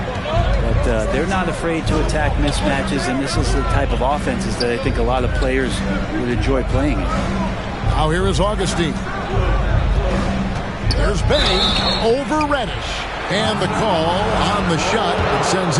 But they're not afraid to attack mismatches, and this is the type of offenses that I think a lot of players would enjoy playing in. Now here is Augustine. There's Bey over Reddish. And the call on the shot that sends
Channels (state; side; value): identical; both; correlation 1.00